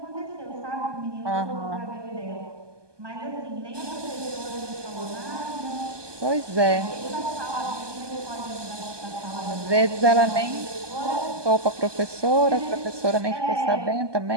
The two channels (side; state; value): left; late; 1.2 ms